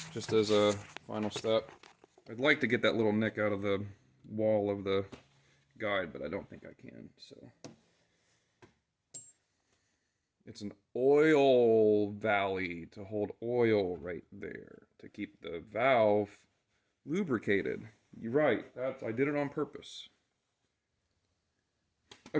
just as a final step. I'd like to get that little nick out of the wall of the guide, but I don't think I can, so. It's an oil valley to hold oil right there to keep the valve lubricated. You're right, I did it on purpose.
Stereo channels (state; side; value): identical; both; correlation 1.00